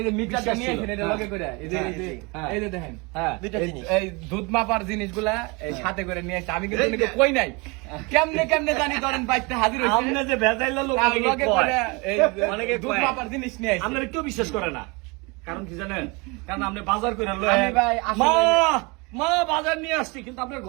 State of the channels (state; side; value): quieter; left; 28.0 dB